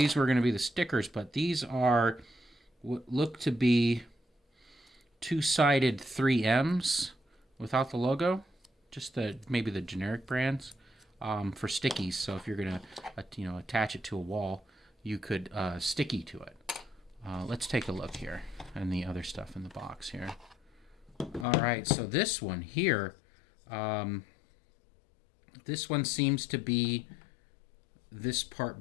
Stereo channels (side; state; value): right; drops out; at 21.5 s